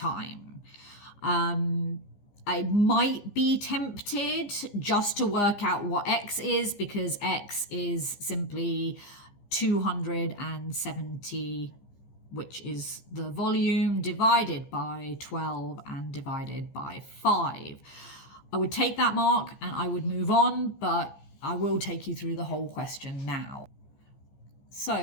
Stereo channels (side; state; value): right; late; 15 ms